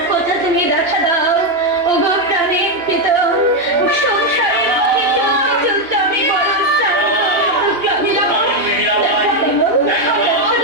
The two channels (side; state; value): left; late; 2.9 ms